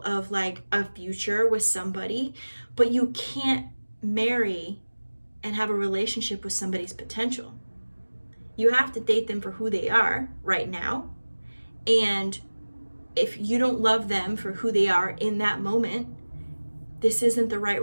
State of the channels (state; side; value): inverted; both; correlation -1.00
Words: of like a future with somebody. But you can't marry and have a relationship with somebody's potential. You have to date them for who they are right now. And if you don't love them for who they are in that moment, this isn't the right